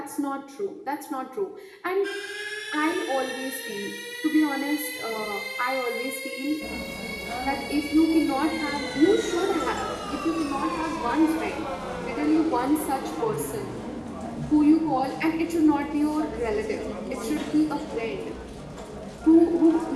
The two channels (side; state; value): both; identical; correlation 1.00